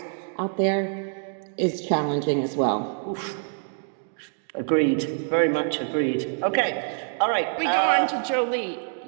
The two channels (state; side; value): silent; left; digital silence